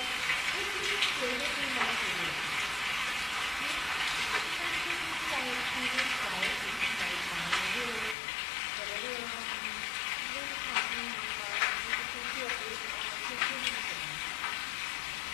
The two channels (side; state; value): right; drops out; at 8.2 s